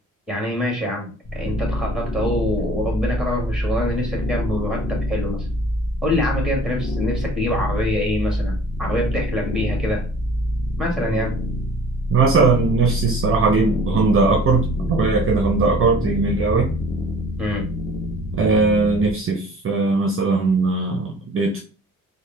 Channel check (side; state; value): both; normal; correlation 0.48